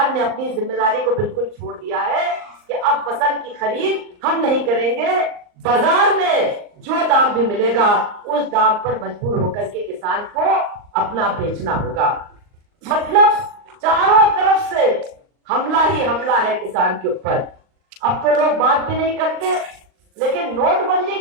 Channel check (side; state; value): left; late; 39 ms